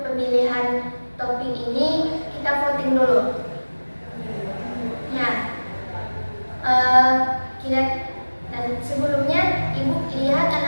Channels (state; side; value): inverted; both; correlation -1.00